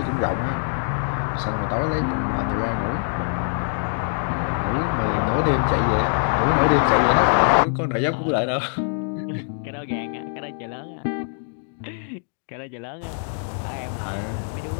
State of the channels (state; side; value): silent; right; digital silence